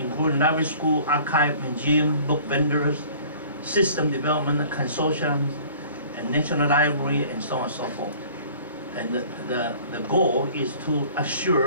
library school, archive, museum, book vendors, system development consortiums, and national library, and so on and so forth. And the goal is to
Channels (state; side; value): inverted; both; correlation -0.49